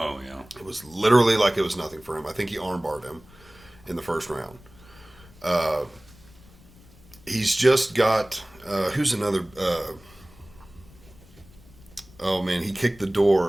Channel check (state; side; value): noise; left; rumble, 24 dB below the sound